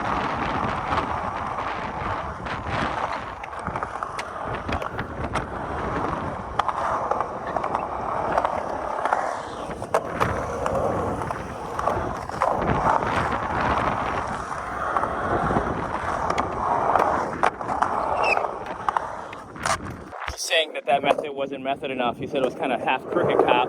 Saying that method wasn't method enough. He said it was kind of half crooked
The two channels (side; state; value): both; identical; correlation 1.00